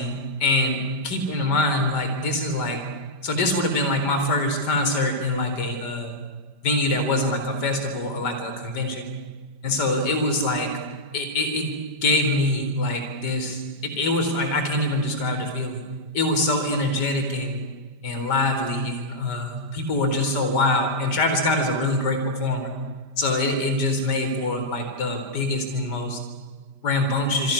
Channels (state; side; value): late; right; 5.1 ms